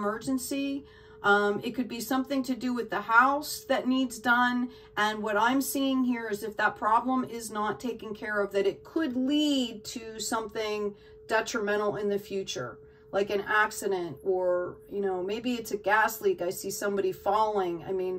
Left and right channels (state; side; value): identical; both; correlation 1.00